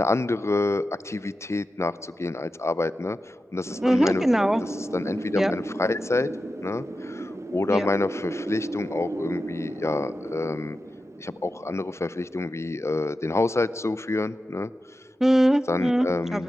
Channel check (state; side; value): normal; both; correlation 0.91